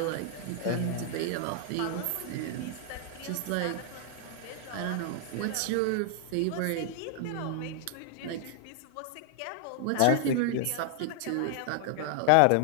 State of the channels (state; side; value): different; both; correlation 0.00